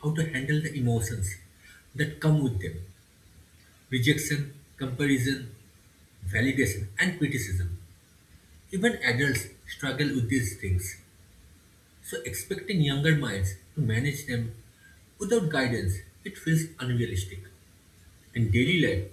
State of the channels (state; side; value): identical; both; correlation 1.00